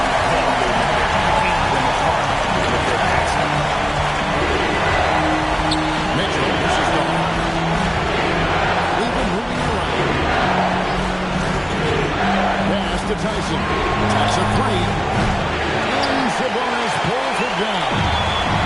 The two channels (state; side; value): identical; both; correlation 1.00